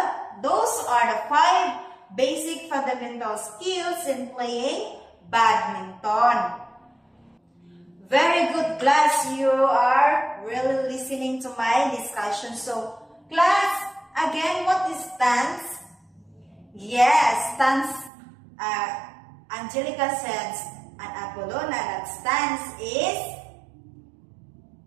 those are the 5 basic fundamental skills in playing badminton. Very good, class. You are really listening to my discussion. So class, again, what is stance? Yes, stance. Angelica says, and Apolona, that stance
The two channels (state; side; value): drops out; left; at 18.1 s